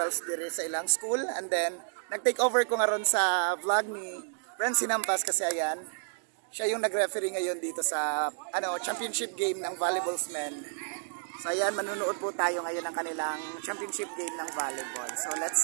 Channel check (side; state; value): left; silent; digital silence